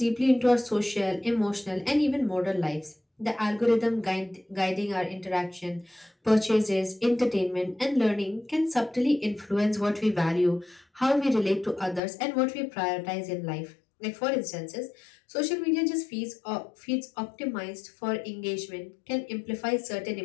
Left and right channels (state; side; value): drops out; right; at 12.0 s